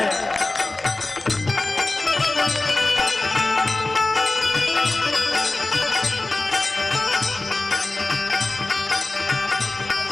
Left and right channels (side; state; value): right; quieter; 3.0 dB